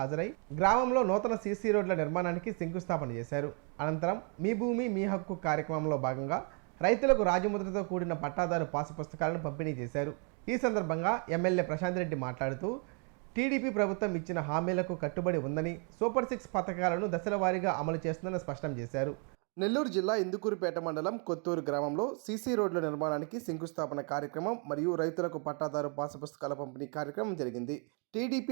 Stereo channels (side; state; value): left; quieter; 38.6 dB